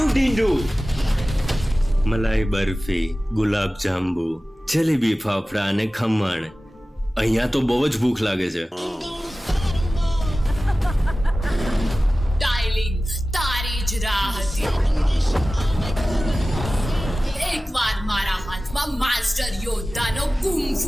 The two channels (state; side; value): normal; both; correlation 0.96